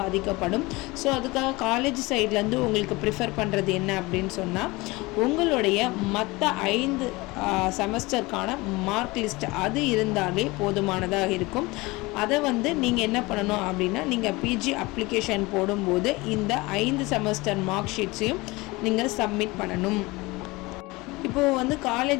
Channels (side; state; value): right; quieter; 22.7 dB